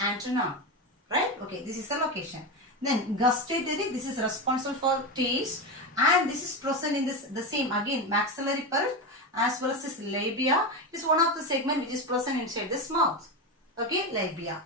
right? Okay, this is the location. Then gustatory, this is responsible for taste, and this is present in this the same again maxillary pulp as well as this labia. It is one of the segment which is present inside this mouth. Okay, labia.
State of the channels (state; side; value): normal; both; correlation 0.17